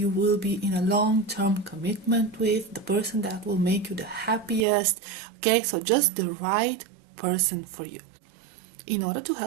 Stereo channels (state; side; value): drops out; left; at 4.7 s